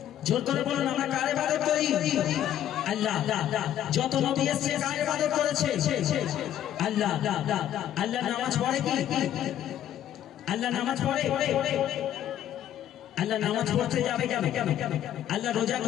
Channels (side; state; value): right; quieter; 11.2 dB